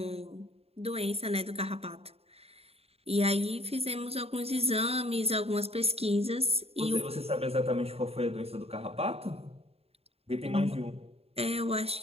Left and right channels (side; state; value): left; late; 0.29 ms